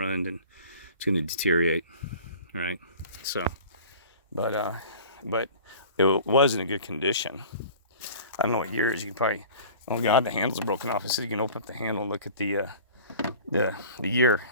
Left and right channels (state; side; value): inverted; both; correlation -0.43